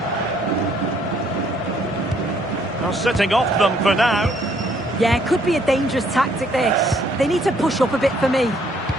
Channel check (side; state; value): both; normal; correlation 0.66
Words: Now sitting off them for now. Yeah, it could be a dangerous tactic, this. They need to push up a bit for me.